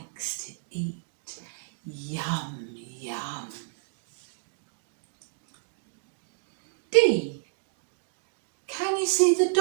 to eat. Yum, yum. D. Can you see the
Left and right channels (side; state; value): left; silent; 58 dB below the other